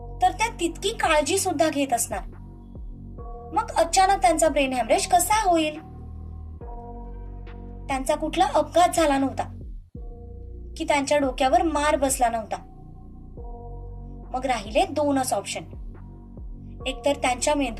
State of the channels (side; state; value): both; identical; correlation 1.00